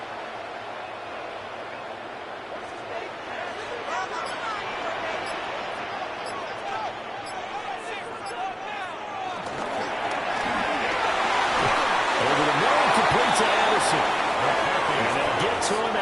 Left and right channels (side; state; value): both; identical; correlation 1.00